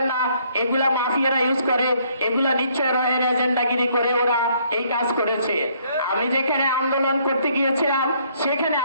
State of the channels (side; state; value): both; inverted; correlation -0.66